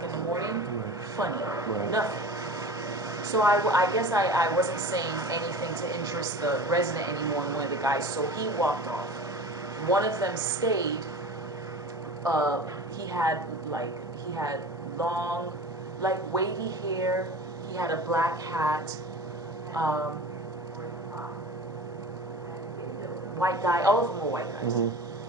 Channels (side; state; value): both; normal; correlation 0.36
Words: in the morning funny, Right. nothing. So I guess I wasn't saying anything to interest the resident anymore in one of the guys, so he walked off. One of them stayed, he had long, like wavy hair, he had a black hat, white guy, all of them were white guys.